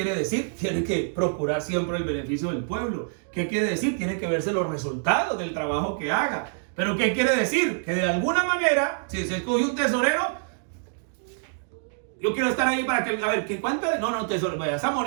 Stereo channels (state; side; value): silent; left; digital silence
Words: decir? Tiene que procurar siempre el beneficio del pueblo. ¿Qué quiere decir? Tiene que verse los resultados del trabajo que haga. ¿Pero qué quiere decir? Que de alguna manera, si se escoge un tesorero, yo quiero estar ahí para que, a ver, ¿qué cuánto? No, tesorero, esa